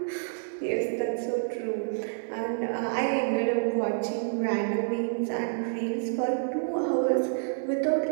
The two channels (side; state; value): left; silent; 59 dB below the other